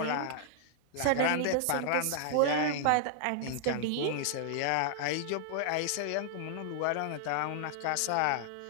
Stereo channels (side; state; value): both; different; correlation -0.01